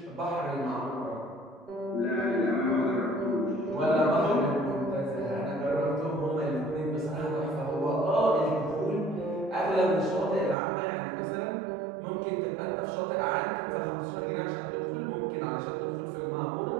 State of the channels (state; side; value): drops out; left; at 10.6 s